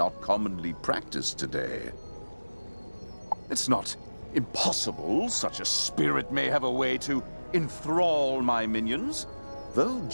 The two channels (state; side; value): inverted; both; correlation -1.00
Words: commonly practiced today. It's not impossible such a spirit may have a way to enthrall my minions, though